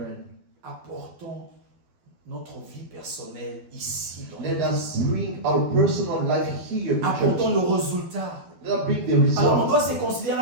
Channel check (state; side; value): late; left; 12 ms